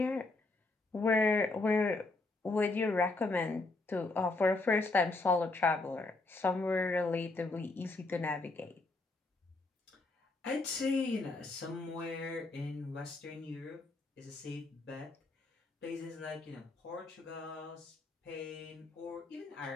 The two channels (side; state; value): right; quieter; 3.3 dB